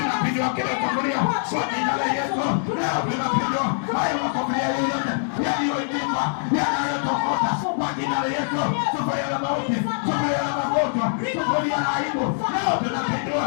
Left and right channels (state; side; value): silent; right; 63 dB below the other